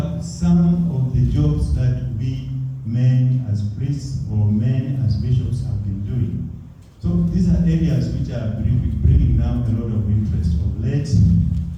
some of the jobs that we men as priests or men as bishops have been doing. So these are areas which are bringing now a lot of interest. Of late,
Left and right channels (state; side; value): identical; both; correlation 1.00